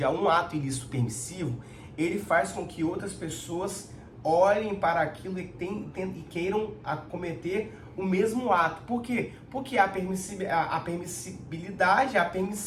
ato ilícito permissivo, ele faz com que outras pessoas olhem para aquilo e queiram cometer o mesmo ato. Por quê? Porque a permissibilidade, a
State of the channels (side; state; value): both; identical; correlation 1.00